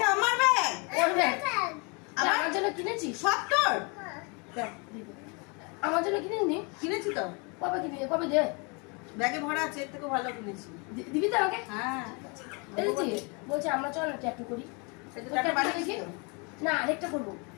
আমার ব্যাগ। ওর ব্যাগ। ব্যাগ। আমার জন্য কিনেছিস? সব তোর? দেখ দিদু। আমার জন্য কিনেনি? কিনেছি তো। কবে কিনে? কবে দে? ব্যাগে ভরা আছে, এর থেকে ভালো কিনেছি। দিবি তো আমাকে? হ্যাঁ। এই যে বলছে আমরা চল না ট্যাটু করি। এটা টাকা বানিয়েছি তো? না আরেকটা করবো।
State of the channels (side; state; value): right; quieter; 32.0 dB